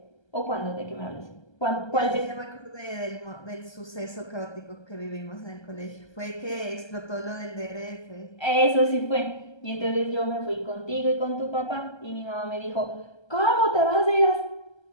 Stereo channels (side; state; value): right; late; 1.3 ms